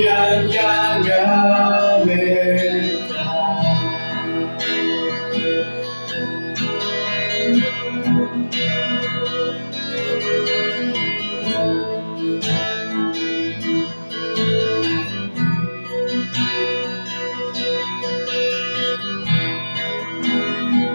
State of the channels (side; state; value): both; inverted; correlation -1.00